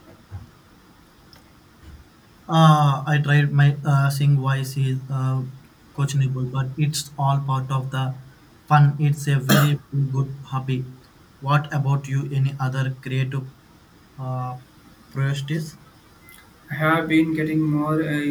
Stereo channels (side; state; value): both; identical; correlation 1.00